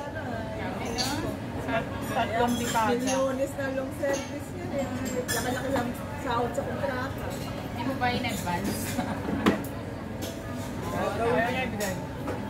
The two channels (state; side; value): identical; both; correlation 1.00